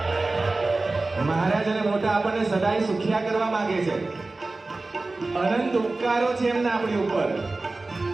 મહારાજ અને મોટા આપણને સદાય સુખિયા કરવા માંગે છે. અનંત ઉપકારો છે એમના આપણી ઉપર.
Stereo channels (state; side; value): quieter; left; 3.3 dB